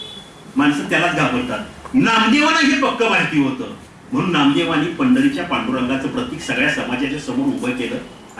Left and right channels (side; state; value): both; identical; correlation 1.00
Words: माणसं त्यालाच घाबरतात. नामदेवांना हे पक्क माहिती होतं, म्हणून नामदेवांनी पंढरीच्या पांडुरंगाचं प्रतीक सगळ्या समाजाच्या समोर उभं केलं